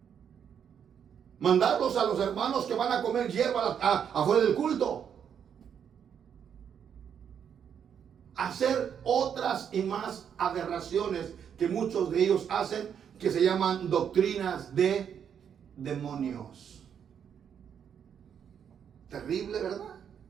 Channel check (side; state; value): left; quieter; 8.1 dB